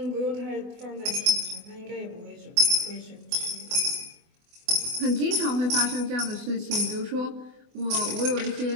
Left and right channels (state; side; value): late; left; 24 ms